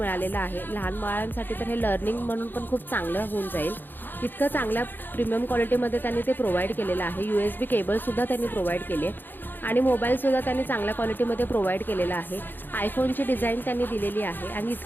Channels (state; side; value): late; right; 0.093 ms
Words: आहे. लहान बाळांसाठी तर हे लर्निंग म्हणून पण खूप चांगलं होऊन जाईल. इतकं चांगल्या प्रीमियम क्वालिटीमध्ये त्यांनी ते प्रोव्हाइड केलेलं आहे. USB केबलसुद्धा त्यांनी प्रोव्हाइड केली आहे आणि मोबाईलसुद्धा त्यांनी चांगल्या क्वालिटीमध्ये प्रोव्हाइड केलेला आहे. आयफोनची डिझाईन त्यांनी दिलेली आहे आणि